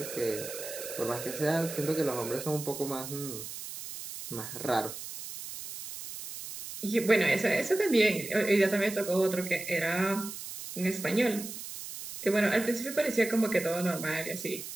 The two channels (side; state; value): right; noise; hiss, 10 dB below the sound